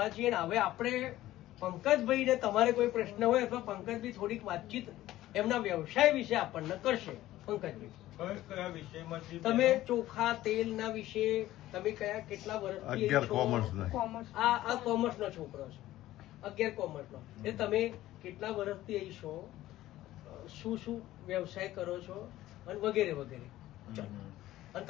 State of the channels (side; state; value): right; quieter; 15.1 dB